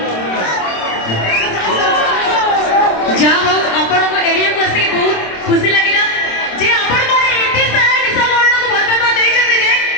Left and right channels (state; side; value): late; right; 26 ms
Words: जहाँ हो आपण एरिया को आसिक बहुत खुशी लगिला जे आपण माने एते सारा निशा मरण को भल पाबा देइ जते जे